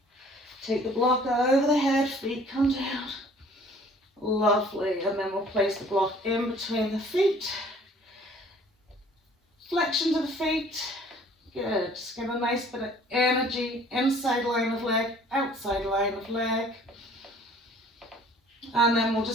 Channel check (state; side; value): normal; both; correlation 0.54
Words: take the block over the head, feet come down. Lovely. And then we'll place the block in between the feet. Flexion to the feet. Good. Just get a nice bit of energy. Inside line of leg, outside line of leg. And then we'll